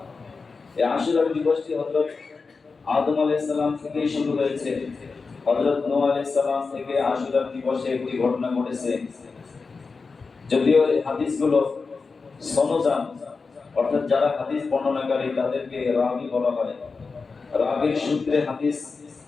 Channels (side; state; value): right; quieter; 4.5 dB